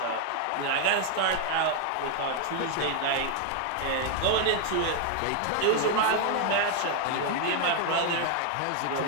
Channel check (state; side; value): different; both; correlation 0.00